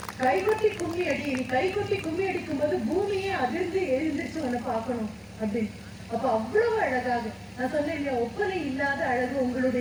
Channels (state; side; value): identical; both; correlation 1.00